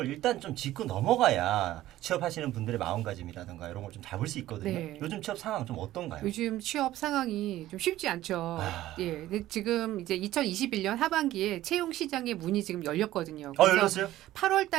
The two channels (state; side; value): quieter; left; 14.8 dB